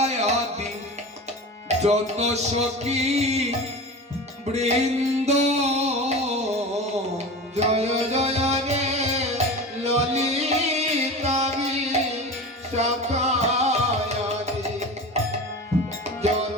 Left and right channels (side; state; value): both; normal; correlation 0.31